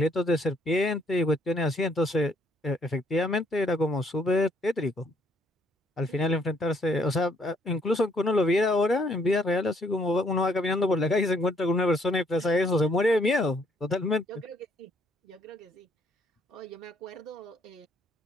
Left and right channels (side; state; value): both; normal; correlation 0.67